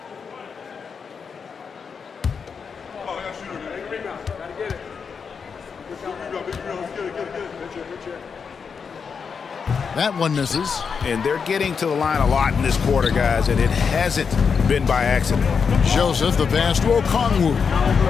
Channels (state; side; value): quieter; right; 6.0 dB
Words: That one misses. And they're getting to the line a lot in this quarter, guys, and it hasn't been by accident. Joseph, the pass to Okongwu.